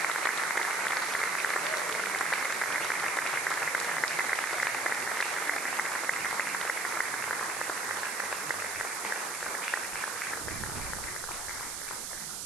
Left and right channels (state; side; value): noise; right; hiss, 4 dB below the sound